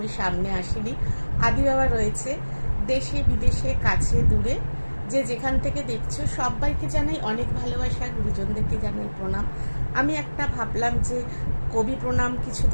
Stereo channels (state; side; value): inverted; both; correlation -1.00